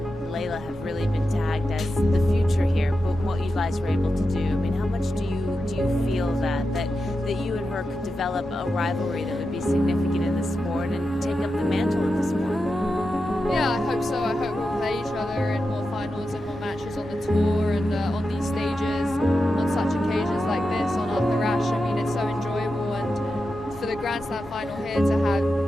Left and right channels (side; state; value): both; normal; correlation 0.90